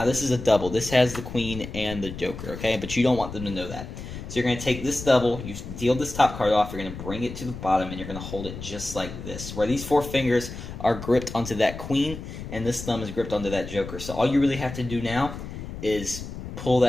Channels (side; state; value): left; noise; rumble, 10 dB below the sound